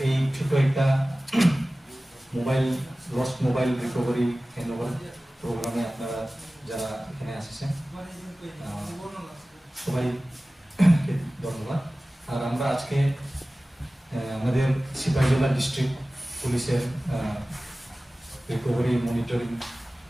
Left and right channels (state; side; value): normal; both; correlation 0.97